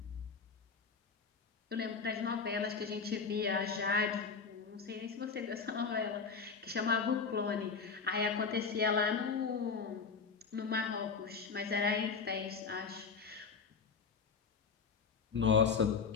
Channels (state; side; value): quieter; right; 5.3 dB